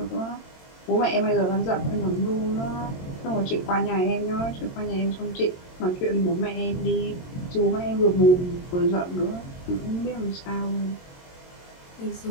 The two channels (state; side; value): late; right; 22 ms